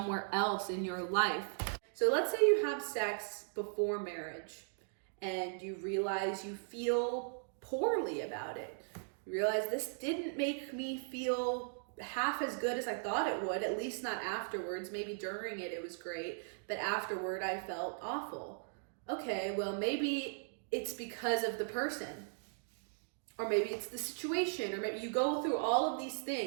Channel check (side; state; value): left; silent; digital silence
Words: else in your life. So let's say you have sex before marriage and you realize you feel poorly about it. You realize this didn't make me feel half as good as I thought it would, at least not afterwards. Maybe during it was great, but afterward I felt awful. Okay, well, maybe it's because of the person, or maybe it's the situation, or maybe you go through all of these